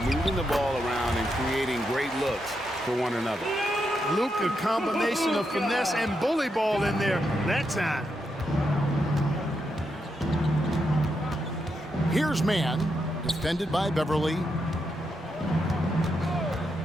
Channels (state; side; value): normal; both; correlation 0.83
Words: the ball around and creating great looks for one another. Luke, a combination of finesse and bully ball in there that time. Here's man, defended by Beverly.